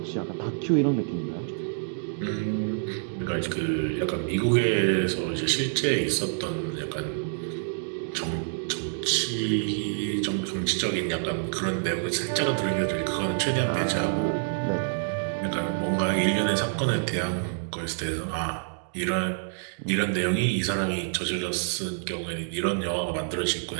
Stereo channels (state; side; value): silent; left; digital silence